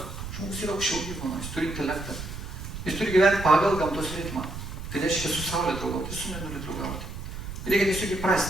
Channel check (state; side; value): noise; right; rumble, 8 dB below the sound